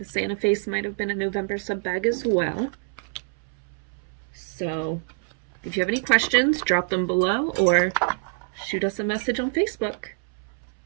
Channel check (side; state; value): left; silent; 61 dB below the other